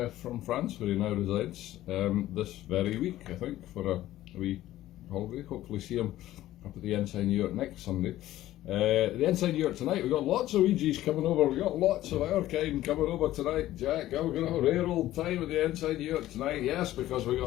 from France, where he now resides, this very week, I think, for a wee holiday. Hopefully see him up at the Ensign Yurt next Sunday. The Ensign Yurt tonight, we've got lots of Ouija's coming over, we've got lots of our kind coming over tonight, Jack. We're going to have a rare old time at the Ensign Yurt tonight, yes, because we've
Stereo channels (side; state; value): right; quieter; 14.6 dB